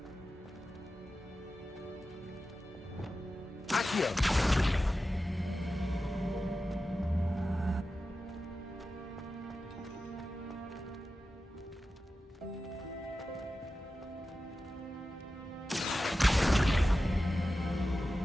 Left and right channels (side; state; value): both; normal; correlation 0.93